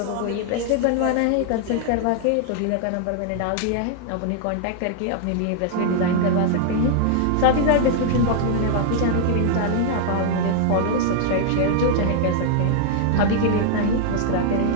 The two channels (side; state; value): both; different; correlation -0.01